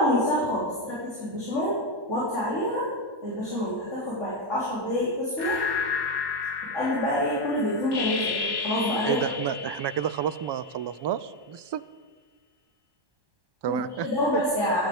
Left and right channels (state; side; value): late; left; 1.2 ms